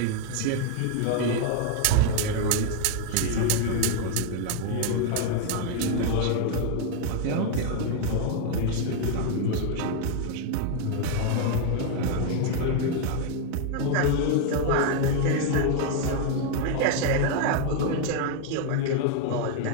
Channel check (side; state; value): both; different; correlation 0.01